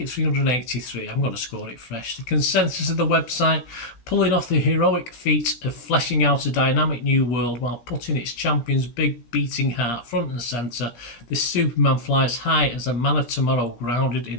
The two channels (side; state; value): right; late; 17 ms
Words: 383. I'm going to score it fresh. The consensus of the website, pulling off the heroic feat of fleshing out a dynamic new world while putting its champion's big beating heart front and centre, this Superman flies high as a man of tomorrow grounded